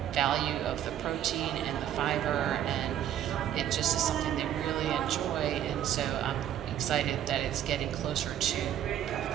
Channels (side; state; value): left; quieter; 10.8 dB